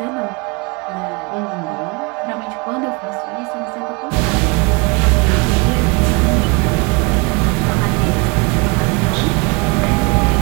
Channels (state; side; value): quieter; left; 29.0 dB